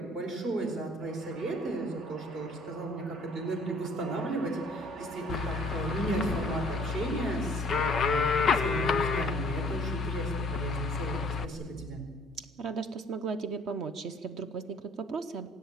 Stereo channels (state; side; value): normal; both; correlation 0.56